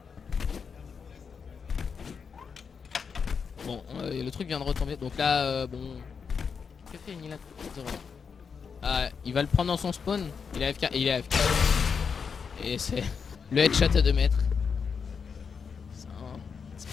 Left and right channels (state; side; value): quieter; right; 6.0 dB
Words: Bon le truc vient de retomber donc là bon. Que fait Nilan? Ah il va le prendre dans son spawn. Il est AFK et il est AFK. Et c'est le headshot à 2 mètres. C'est